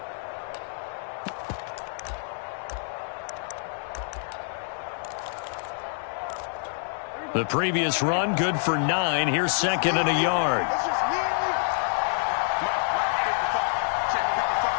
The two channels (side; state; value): right; silent; digital silence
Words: The previous run, good for 9. Here's 2nd and a yard.